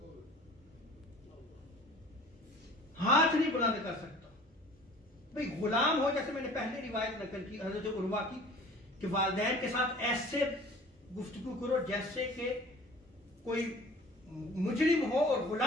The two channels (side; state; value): both; normal; correlation 0.46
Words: ہاتھ نہیں بلند کر سکتا۔ بھئی غلام ہو، جیسے میں نے پہلے روایت نقل کی حضرت عروہ کی کہ والدین کے ساتھ ایسے گفتگو کرو جیسے کہ کوئی مجرم ہو اور